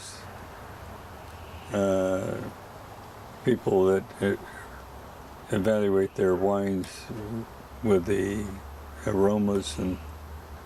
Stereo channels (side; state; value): both; identical; correlation 1.00